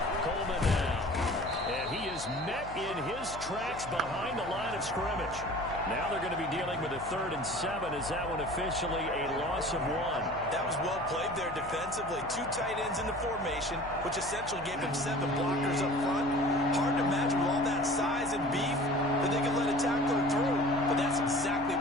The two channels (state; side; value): noise; left; hum, 14 dB below the sound